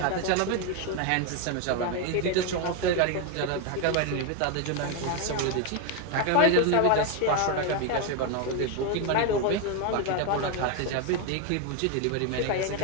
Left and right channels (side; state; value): both; different; correlation 0.01